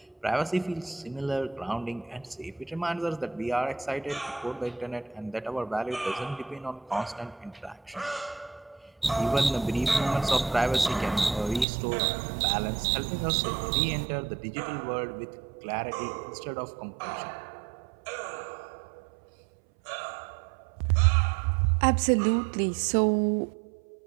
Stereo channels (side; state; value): left; drops out; at 11.7 s